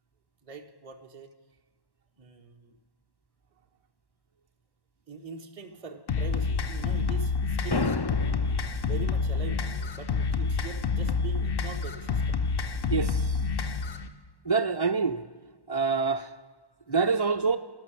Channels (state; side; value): late; right; 1.1 ms